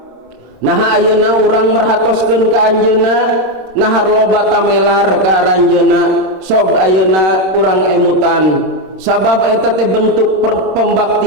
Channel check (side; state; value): left; late; 26 ms